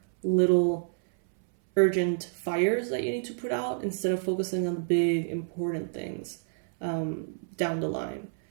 little urgent fires that you need to put out instead of focusing on the big, important things down the line.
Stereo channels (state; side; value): silent; left; 59 dB below the other